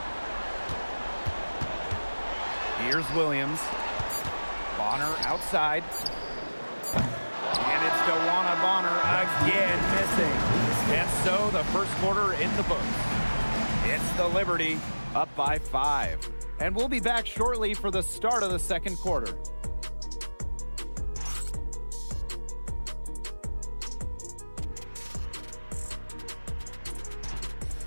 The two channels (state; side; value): inverted; both; correlation -1.00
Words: Here's Williams. Bonner outside. And it's DeWanna Bonner again missing. And so the first quarter in the books. It's the Liberty up by 5. And we'll be back shortly for the start of the second quarter.